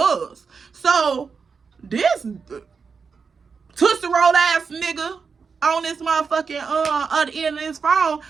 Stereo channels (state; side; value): quieter; left; 5.4 dB